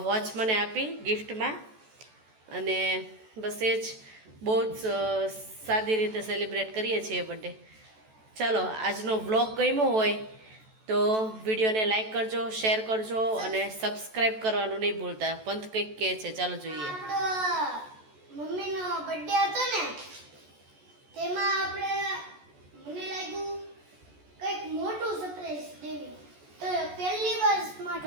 વોચ મને આપી ગિફ્ટમાં. અને બસ એ જ બહુ જ સાદી રીતે સેલિબ્રેટ કરીએ છીએ બર્થડે. ચાલો આજનો વ્લોગ ગમ્યો હોય તો વિડીયોને લાઈક કરજો, શેર કરજો અને સબસ્ક્રાઈબ કરવાનું નહીં ભૂલતા. પંથ કંઈક કહે છે, ચાલો જોઈએ. મમ્મીનો બર્થડે હતો ને, તેમાં આપણે મને લાગ્યું કંઈક મોટું સરપ્રાઈઝ દેવી, તો પહેલી વાર સ્માર્ટ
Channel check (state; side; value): late; left; 14 ms